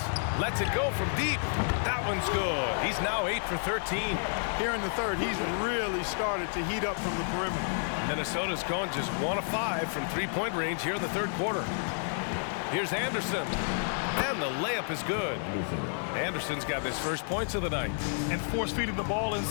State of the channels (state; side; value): silent; right; 57 dB below the other